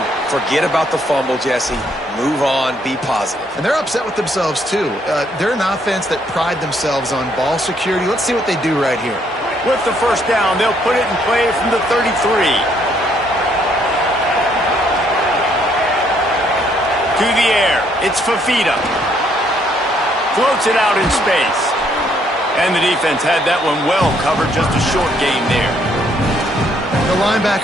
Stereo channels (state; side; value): normal; both; correlation 0.69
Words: Forget about the fumble, Jesse. Move on. Be positive. And they're upset with themselves, too. They're an offense that pride themselves on ball security. Let's see what they do right here. With the first down, they'll put it in play from the 33. To the air. It's Fafita. Floats it out in space. And the defense had that one well covered, just a short gain there. The